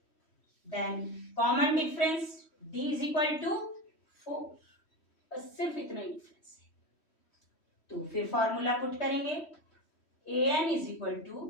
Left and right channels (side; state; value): right; late; 3.1 ms